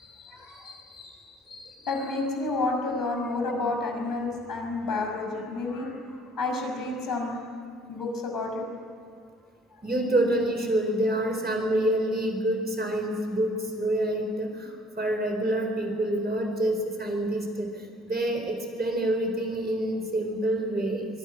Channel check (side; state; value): both; normal; correlation 0.57